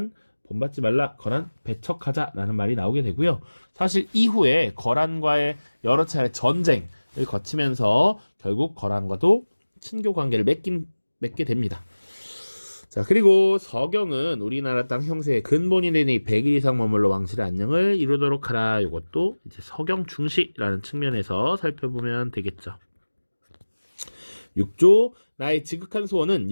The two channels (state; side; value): inverted; both; correlation -1.00